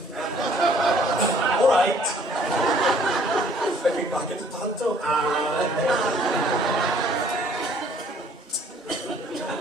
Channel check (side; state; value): both; normal; correlation 0.59